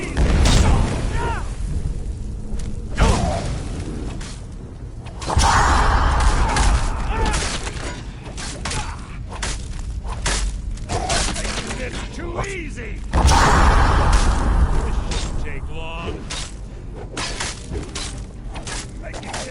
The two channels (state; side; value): identical; both; correlation 1.00